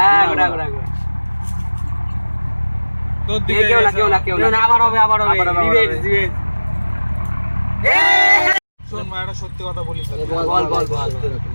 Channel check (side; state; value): both; inverted; correlation -1.00